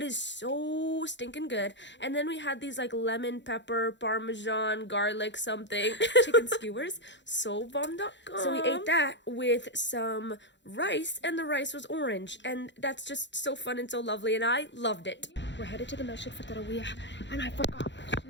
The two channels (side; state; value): right; late; 0.52 ms